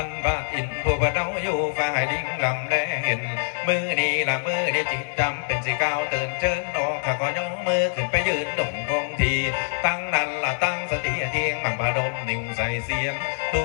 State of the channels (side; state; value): right; silent; digital silence